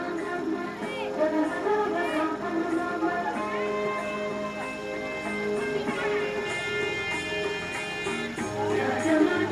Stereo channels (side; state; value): both; identical; correlation 1.00